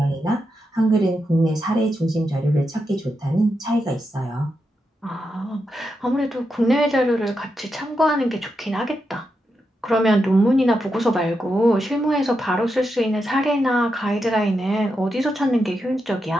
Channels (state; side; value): normal; both; correlation 0.86